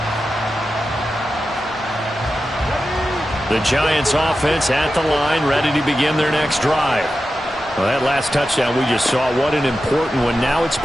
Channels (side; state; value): both; normal; correlation 0.92